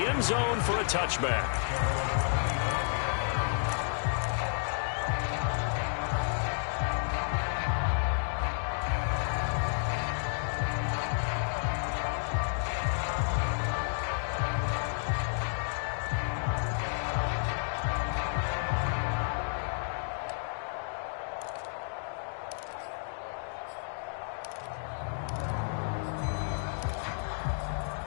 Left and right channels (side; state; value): right; silent; digital silence